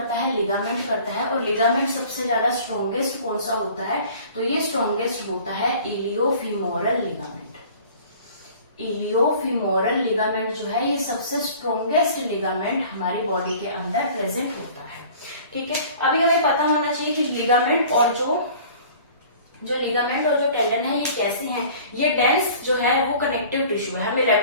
है, लिगामेंट करता है। और लिगामेंट सबसे ज्यादा स्ट्रॉन्गेस्ट कौन सा होता है, तो ये स्ट्रॉन्गेस्ट होता है इलियोफिमोरल लिगामेंट। इलियोफिमोरल लिगामेंट जो है ये सबसे स्ट्रॉन्गेस्ट लिगामेंट हमारी बॉडी के अंदर प्रेजेंट होता है। ठीक है, अभी हमें पता होना चाहिए कि लिगामेंट और जो लिगामेंट और जो टेंडन है ये कैसे हैं। ये डेंस जो है वो कनेक्टिव टिश्यू है, हमें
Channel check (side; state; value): both; inverted; correlation -0.47